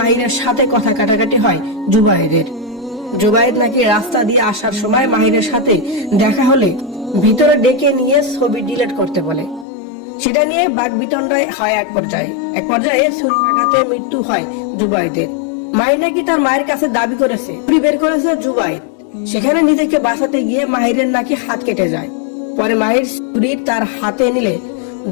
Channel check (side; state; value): right; drops out; at 9.7 s